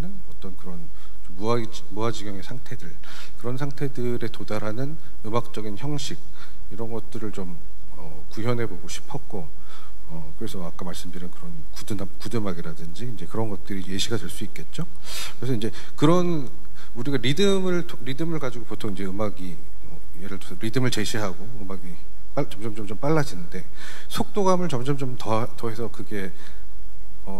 어떤 그런 무아지경의 상태들 그런 상태들에 도달하는 음악적인 형식 이런 것들을 좀 구현해보고 싶었고 그래서 아까 말씀드린 그런 구드음악이라든지 이제 그런 것들이 예시가 될 수 있겠죠. 그래서 이제 그런 우리가 리듬을 가지고 보통 이제 음악이 예를 들어서 리듬을 제시하고 음악이 점점 빨라지는데 속도감을 점점 더해서 그게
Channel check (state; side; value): normal; both; correlation 0.96